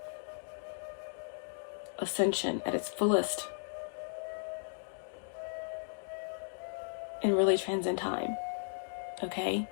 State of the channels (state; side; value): silent; right; digital silence